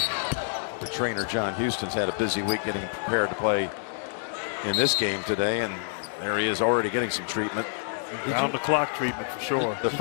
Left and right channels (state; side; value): silent; right; digital silence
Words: The trainer John Houston's had a busy week getting prepared to play in this game today, and there he is already getting some treatment. Round the clock treatment for sure. The